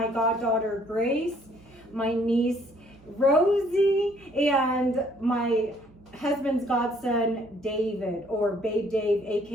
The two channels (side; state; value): right; noise; hum, 26 dB below the sound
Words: goddaughter Grace, my niece Rosie, and my husband's godson David, or Babe Dave,